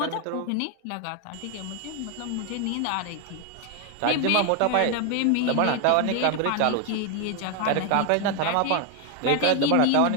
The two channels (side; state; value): both; different; correlation 0.01